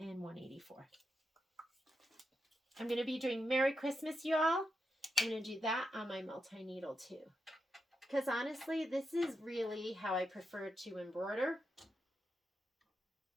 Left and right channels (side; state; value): both; normal; correlation 0.86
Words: 184. I'm going to be doing Merry Christmas, y'all. I'm going to do that on my multi-needle too. Because honestly, this is really how I prefer to embroider.